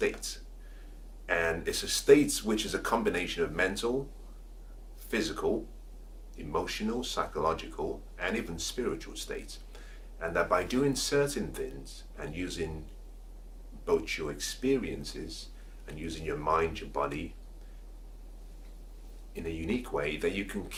And it's a state which is a combination of mental, physical, emotional, psychological, and even spiritual states. And that by doing certain things and using both your experiences and using your mind, your body in a unique way, that you can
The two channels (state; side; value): identical; both; correlation 1.00